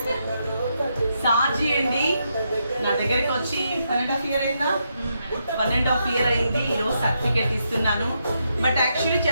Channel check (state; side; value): inverted; both; correlation -0.81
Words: సాజీ అండి నా దగ్గరికి వచ్చి 1.5 year అయిందా? 1.5 year అయింది. ఈరోజు సర్టిఫికేట్ ఇస్తున్నాను. బట్ యాక్చువల్లీ